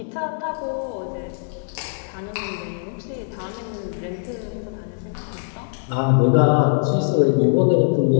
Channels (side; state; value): right; silent; 64 dB below the other